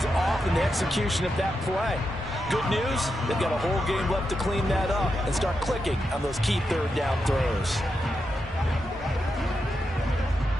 off in the execution of that play. Good news, they've got a whole game left to clean that up and start clicking on those key 3rd down throws.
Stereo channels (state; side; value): normal; both; correlation 0.86